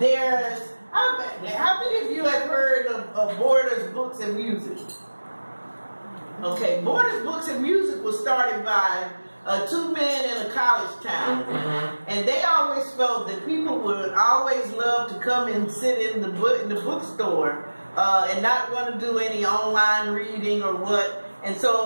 there's, how many of you have heard of Borders Books and Music? Okay, Borders Books and Music was started by two men in a college town. And they always felt that people would always love to come and sit in the bookstore and not want to do any online reading or what. And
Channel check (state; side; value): inverted; both; correlation -1.00